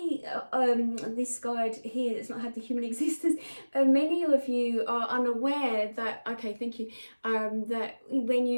this guide here that's not had the human existence, many of you are unaware that, okay, thank you, that when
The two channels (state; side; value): inverted; both; correlation -1.00